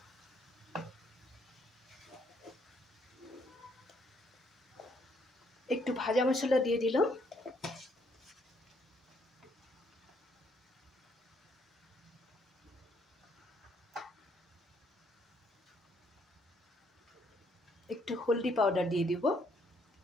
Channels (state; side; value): normal; both; correlation 0.69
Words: একটু ভাজা মশলা দিয়ে দিলাম, একটু হলদি পাউডার দিয়ে দিব।